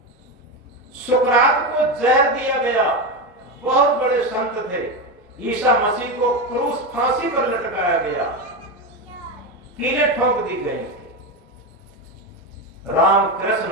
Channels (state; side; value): normal; both; correlation 0.15